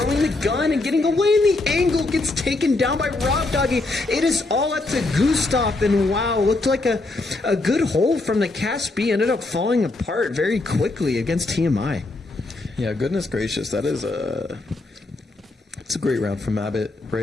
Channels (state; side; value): quieter; right; 3.1 dB